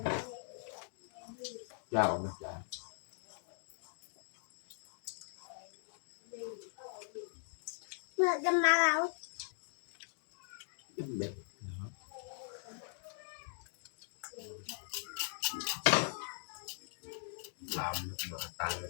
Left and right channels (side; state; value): right; silent; digital silence